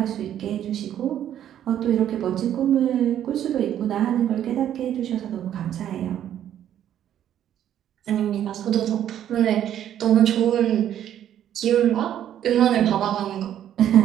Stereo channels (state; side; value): quieter; left; 10.7 dB